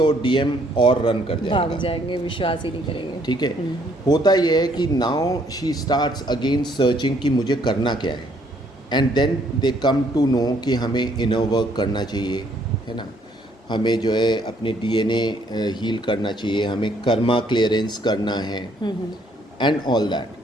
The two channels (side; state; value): both; normal; correlation 0.66